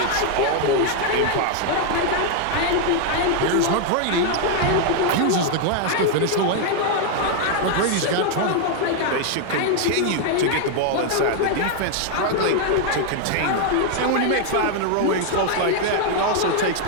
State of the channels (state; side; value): different; both; correlation 0.00